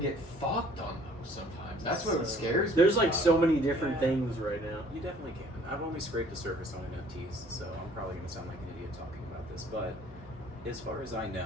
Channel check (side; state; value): both; normal; correlation 0.56